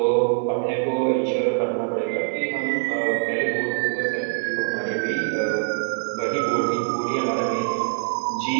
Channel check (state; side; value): silent; left; digital silence